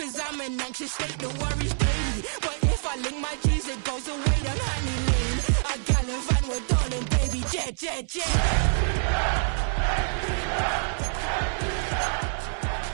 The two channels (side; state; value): left; silent; 61 dB below the other